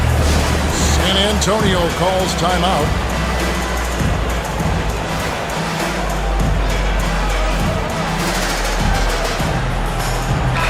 San Antonio calls timeout.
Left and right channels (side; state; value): both; identical; correlation 1.00